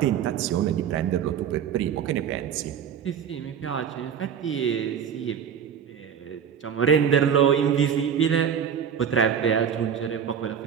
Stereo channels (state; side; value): quieter; left; 8.0 dB